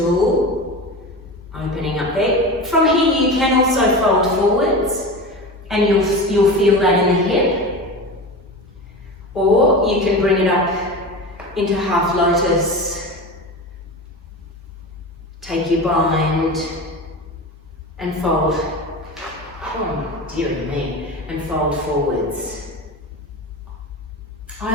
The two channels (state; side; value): normal; both; correlation 0.28